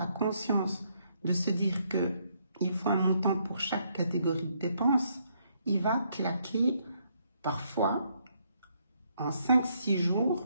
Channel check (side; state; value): both; inverted; correlation -0.73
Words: conscience de se dire qu'il faut un montant pour chaque catégorie de dépenses, il va claquer parfois en 5-6 jours